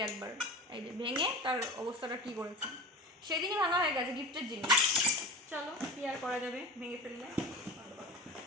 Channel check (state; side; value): normal; both; correlation 0.31